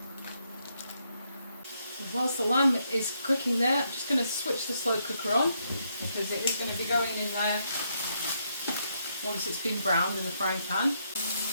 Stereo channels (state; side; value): inverted; both; correlation -0.77